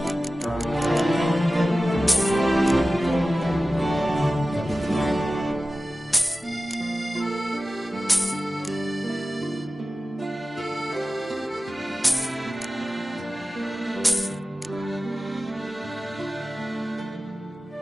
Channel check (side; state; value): both; normal; correlation 0.95